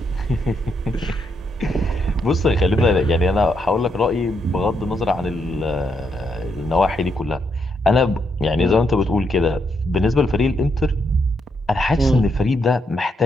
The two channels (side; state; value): both; normal; correlation 0.78